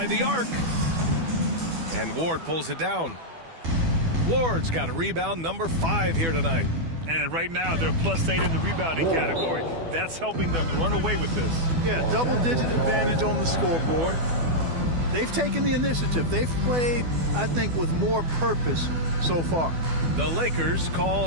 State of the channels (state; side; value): late; left; 12 ms